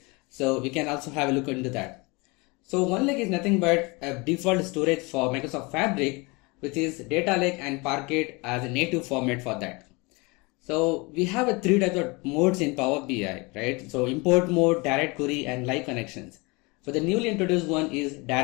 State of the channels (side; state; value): right; quieter; 26.9 dB